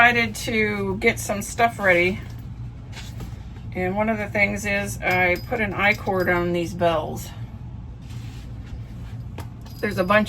to get some stuff ready. And one of the things is I put an I-cord on these bells. There's a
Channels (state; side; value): identical; both; correlation 1.00